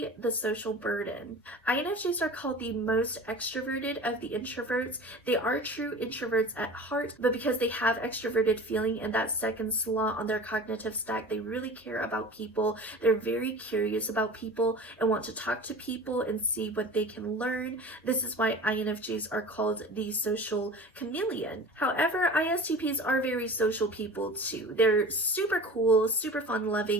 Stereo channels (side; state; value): both; normal; correlation 0.38